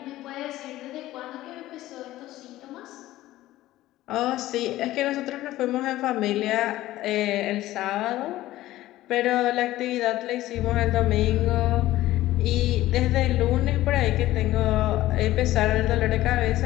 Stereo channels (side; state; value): right; quieter; 15.6 dB